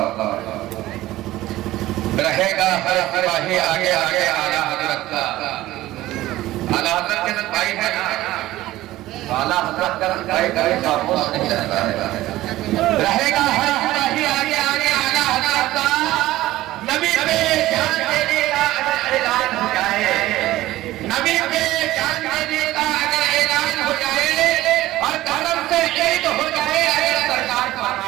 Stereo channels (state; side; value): quieter; left; 16.2 dB